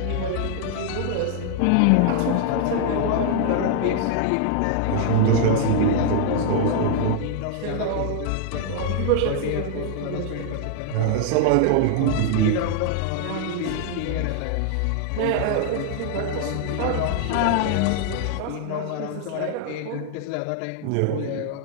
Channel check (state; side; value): different; both; correlation 0.00